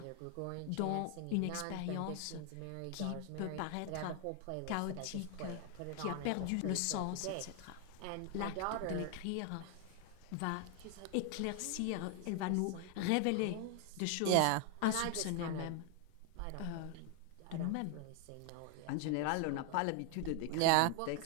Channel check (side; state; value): both; different; correlation 0.00